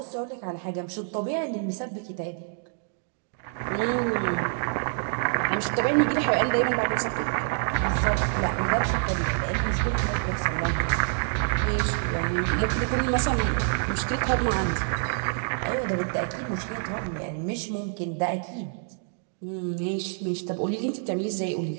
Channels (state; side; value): silent; left; digital silence